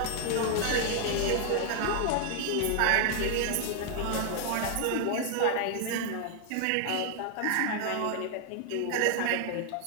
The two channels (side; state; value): both; different; correlation 0.00